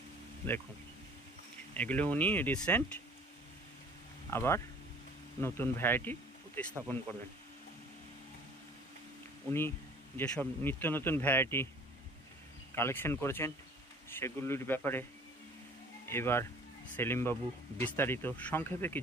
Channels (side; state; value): both; normal; correlation 0.50